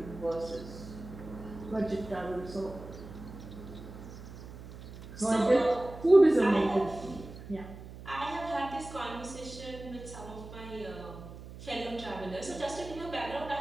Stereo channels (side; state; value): right; noise; hum, 14 dB below the sound